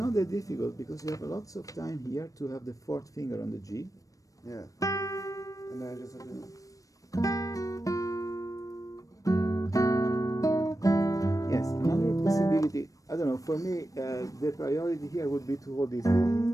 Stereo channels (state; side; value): late; right; 0.16 ms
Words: that difficult because you have lots of time here to have the fourth finger on the G. Yeah. And then I just have to. Yes, another possibility, I don't know, for me, the priority here would be to hold this.